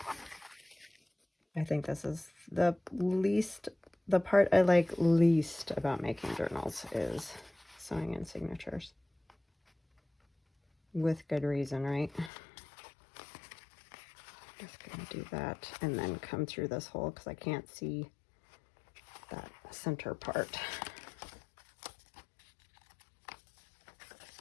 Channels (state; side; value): drops out; right; at 12.3 s